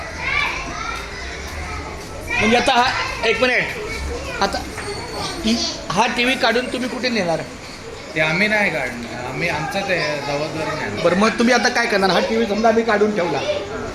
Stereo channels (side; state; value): both; identical; correlation 1.00